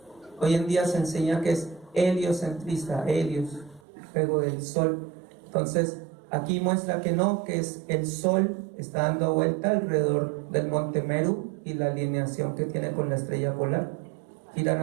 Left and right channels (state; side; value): drops out; left; at 3.8 s